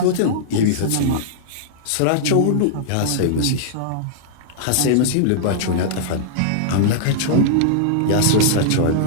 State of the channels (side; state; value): both; different; correlation -0.02